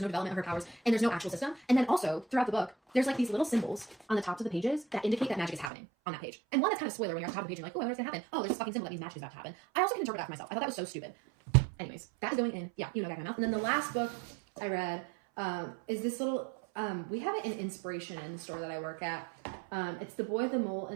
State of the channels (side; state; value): left; drops out; at 5.7 s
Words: no development of her powers, and there's no actual system. And then also, throughout the book, there's like these little symbols on the tops of the pages that indicate that magic is happening on that page. And one that's kind of spoiler when you're on top of the page and you're like, oh, I wonder what's gonna happen. Oh, there's this fucking symbol that means magic is about to happen. I also can interpret that for myself. I thought that was so stupid. Anyways, that is going in, yeah, you know, back in my mouth. And then the last book I read is this little, we have it in Inspiration in the store that I work at. It's The Boy, the Mole,